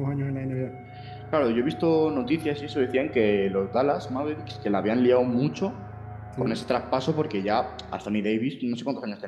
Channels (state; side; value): identical; both; correlation 1.00